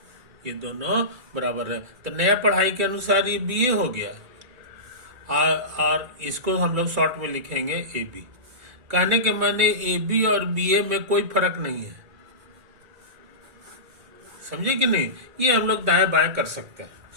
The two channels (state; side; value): late; left; 2.2 ms